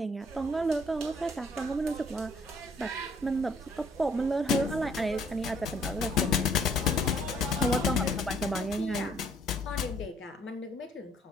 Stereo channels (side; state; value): both; normal; correlation 0.63